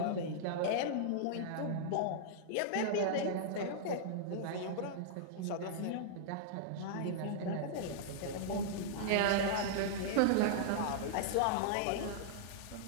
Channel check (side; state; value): both; different; correlation -0.02